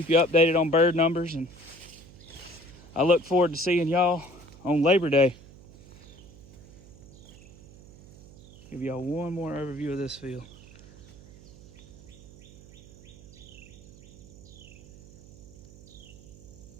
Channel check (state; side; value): noise; right; hum, 20 dB below the sound